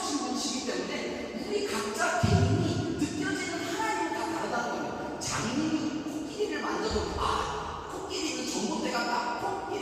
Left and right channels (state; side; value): identical; both; correlation 1.00